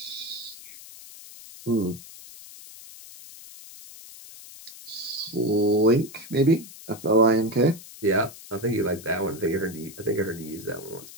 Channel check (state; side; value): noise; left; hiss, 17 dB below the sound